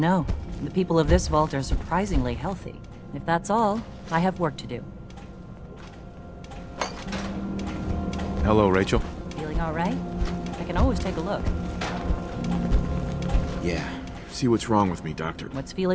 The people of this vault are surprisingly healthy. If that's all, I have work to do. Hello, Rachel. Feeling all right? I can always take a look. Yeah. See what's wrong with me, Doctor. What's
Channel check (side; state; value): both; identical; correlation 1.00